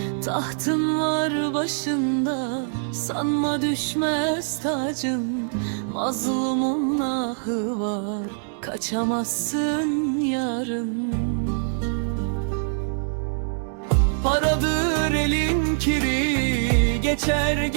Tahtın var başında, sanma düşmez tacın. Mazlumun ahı var, kaçamazsın yarın. Paradır elin kiri, geçer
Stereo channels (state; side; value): silent; left; digital silence